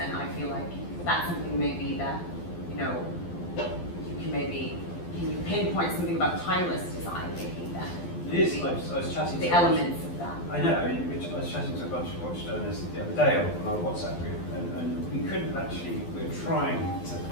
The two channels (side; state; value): right; late; 12 ms